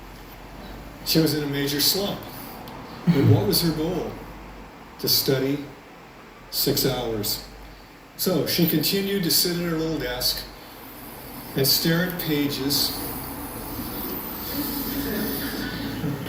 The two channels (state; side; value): identical; both; correlation 1.00